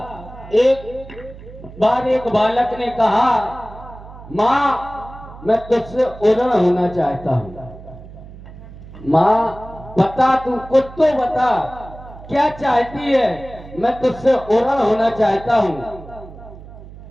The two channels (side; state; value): right; noise; hum, 16 dB below the sound